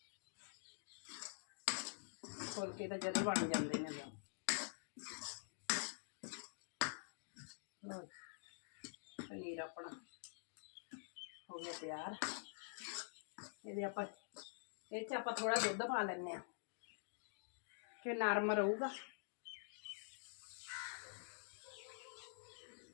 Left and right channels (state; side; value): silent; right; digital silence